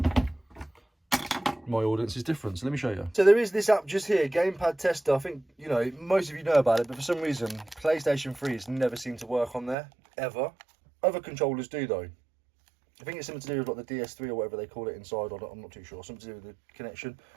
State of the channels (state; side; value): drops out; left; at 9.8 s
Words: my audience is different, so let me show you. So there is this app just here, Gamepad Tester. I think, you know, most of you know about it, but for some reason, PlayStation 3's never seemed to work on there, ever. Other controllers do, though. I think it's something to do with like the DS3 or whatever they call it inside, or I'm not too sure. Something to do with the connection.